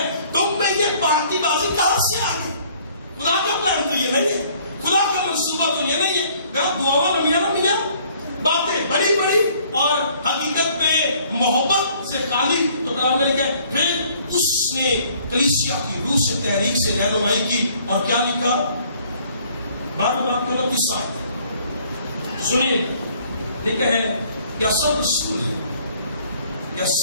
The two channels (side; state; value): both; inverted; correlation -0.59